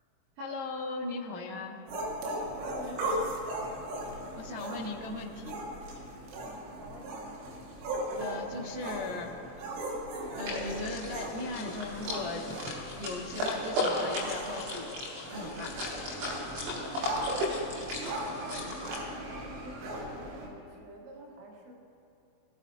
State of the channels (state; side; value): late; left; 23 ms